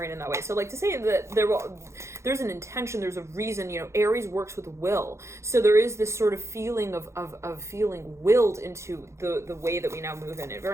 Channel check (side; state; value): left; late; 0.14 ms